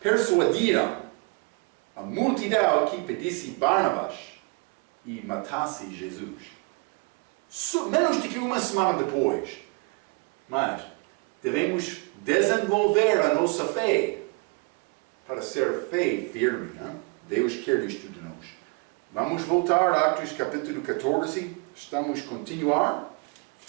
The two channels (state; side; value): quieter; left; 30.6 dB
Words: a multidão que pedisse Barnabas e matasse Jesus. Menos do que uma semana depois. Mas devemos desenvolver a nossa fé para ser fé firme. Hein? Deus quer isto de nós. Vamos voltar a Atos capítulo 14. Estamos a continuar.